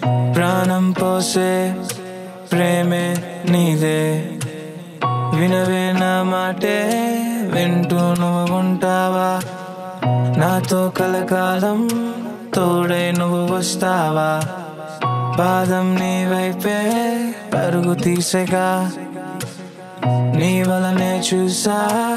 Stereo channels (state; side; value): identical; both; correlation 1.00